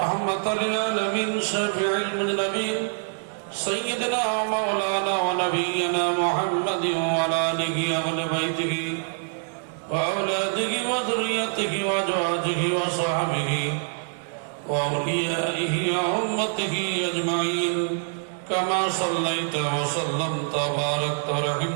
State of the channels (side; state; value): left; silent; digital silence